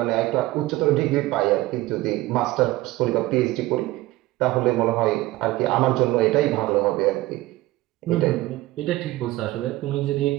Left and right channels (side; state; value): left; quieter; 18.0 dB